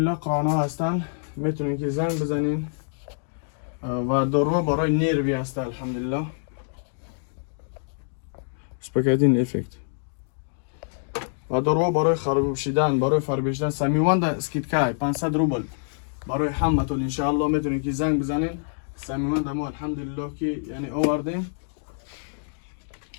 قرآن ها هستن. میتونین که زنگ بزنین و دارو برای نروی است الحمدلله. سپکتین افکت و دارو برای خراب شدن، برای فربشتن سمیوند اسکیتکای 500 روبل برای همتون انشاءالله میتونید که زنگ بزنین. سمیوند ما الحمدلله که یعنی آوردیم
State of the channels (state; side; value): silent; right; digital silence